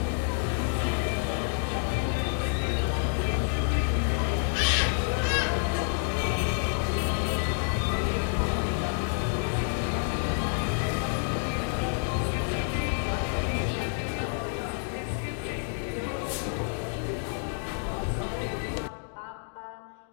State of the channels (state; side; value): silent; right; 59 dB below the other